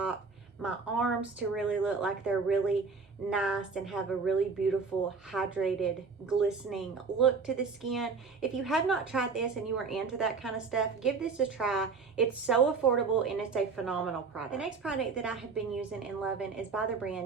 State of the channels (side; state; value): left; quieter; 4.8 dB